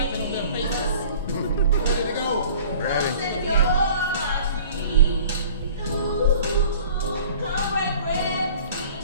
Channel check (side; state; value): both; inverted; correlation -0.47